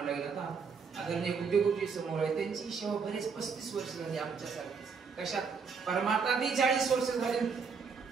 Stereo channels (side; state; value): left; quieter; 5.6 dB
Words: लागेल. आता आदरणीय गुड्डेगुड्डी समोर आहे, त्यांची सेवा बरेच 35 वर्ष झाली आमच्यासारखी. कशात? परमार्थात 40 वर्ष झाली,